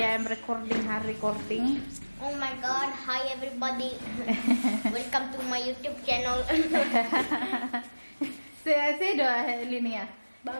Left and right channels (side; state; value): both; inverted; correlation -1.00